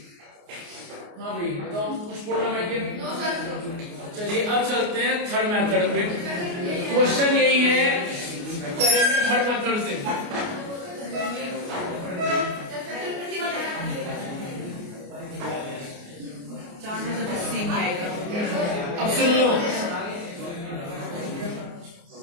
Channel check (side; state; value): left; late; 29 ms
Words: हाँ भाई बताओ, कुछ प्रॉब्लम है क्या? चलिए अब चलते हैं थर्ड मेथड पे। क्वेश्चन यही है, करेंगे थर्ड मेथड से। अब सुन लो,